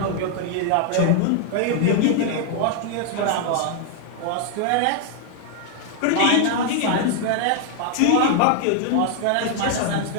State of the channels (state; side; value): different; both; correlation 0.00